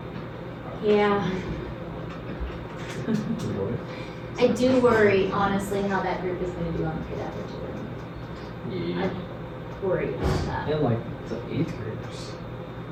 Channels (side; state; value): both; identical; correlation 1.00